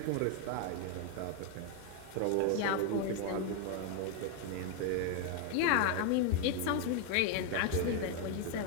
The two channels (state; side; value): different; both; correlation 0.01